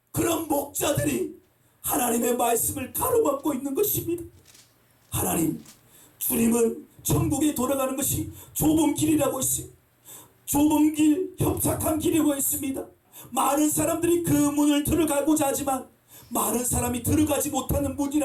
그런 목자들이 하나님의 말씀을 가로막고 있는 것입니다. 하나님, 주님은 천국에 돌아가는 것이 좁은 길이라고 했어요. 좁은 길, 협착한 길이라고 했습니다. 많은 사람들이 그 문을 들어가고자 하지만 많은 사람이 들어가지 못하는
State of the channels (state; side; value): identical; both; correlation 1.00